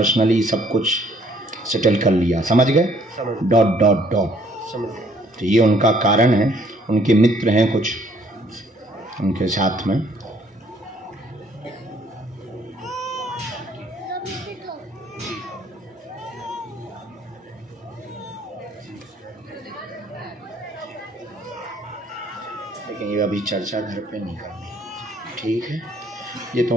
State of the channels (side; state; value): both; normal; correlation 0.62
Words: सब कुछ सेटल कर लिया। समझ गए? समझ। Dot dot dot. समझ। तो ये उनका कारण है, उनके मित्र हैं कुछ उनके साथ में। लेकिन ये अभी चर्चा घर पे नहीं करनी, ठीक है? ये